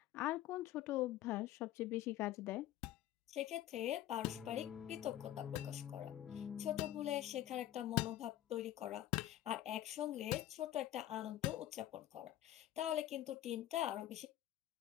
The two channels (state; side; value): quieter; right; 13.1 dB